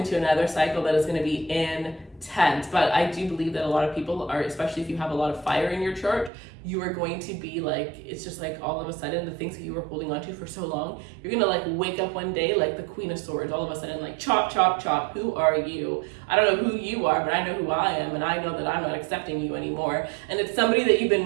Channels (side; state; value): left; drops out; at 6.3 s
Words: is going to be intense. But I do believe that a lot of people are, especially if you have a lot of fire in your chart, you are going to be like, it's just like all of a sudden the things that you were holding on to for so long, you're gonna like wake up one day like the Queen of Swords, all of a sudden like chop, chop, chop. Who are you? I don't know who you are, but I know who I am, and I know that I'm not accepting you anymore. And it's somebody that you've